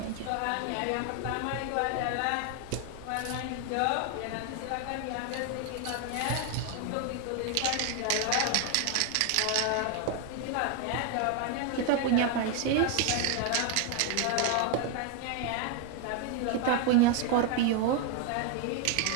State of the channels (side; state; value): both; different; correlation 0.01